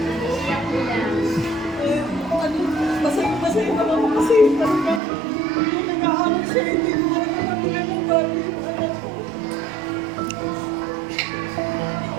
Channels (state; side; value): drops out; left; at 5.0 s